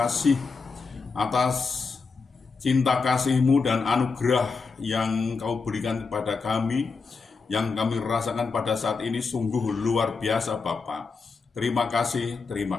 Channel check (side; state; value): right; quieter; 4.7 dB